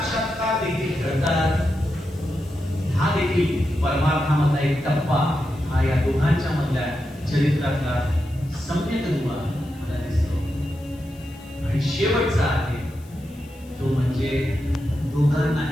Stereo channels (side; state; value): left; noise; hiss, 27 dB below the sound